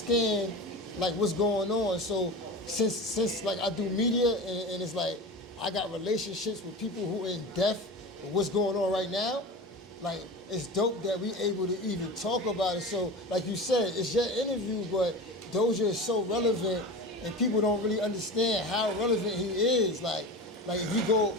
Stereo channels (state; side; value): normal; both; correlation 0.30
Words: like what's going on. So since like I do media and it's like I got relationships with people who are in depth with what's going on right now, like it's dope that we able to even talk about it. So like you said, it's your interview, but Doja is so relevant and people don't really understand how relevant he is. Like if you